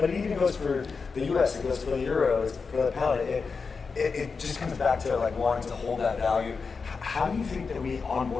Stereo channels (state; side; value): quieter; right; 4.9 dB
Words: it even goes for the U.S. It goes for the euro. It's for the pound. It just comes back to wanting to hold that value. How do you think that we